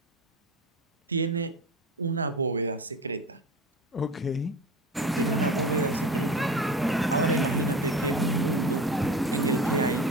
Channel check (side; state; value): both; normal; correlation 0.31